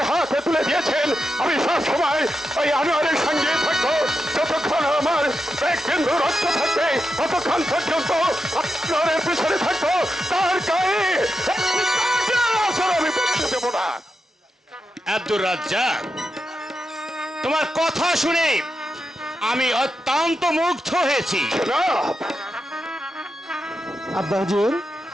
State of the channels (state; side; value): normal; both; correlation 0.87